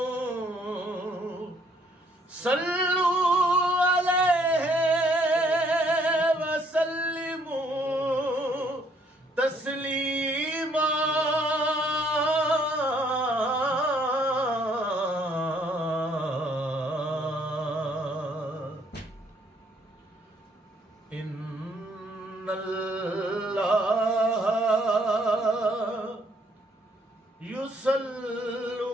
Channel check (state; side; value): normal; both; correlation 0.66